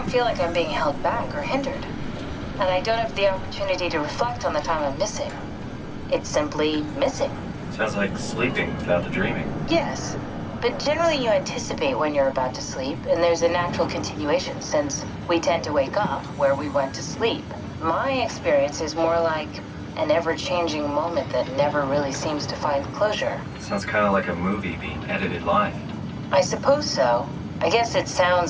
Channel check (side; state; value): both; identical; correlation 1.00